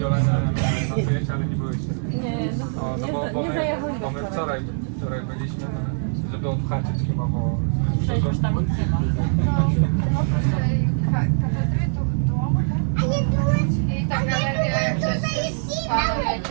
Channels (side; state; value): left; silent; digital silence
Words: nocujecie, ale nie byłyście. No bo my wczoraj byliśmy, żeby odhaczyć chyba, bo... Przejść tam od chyba. I ta galeria jak też jest panem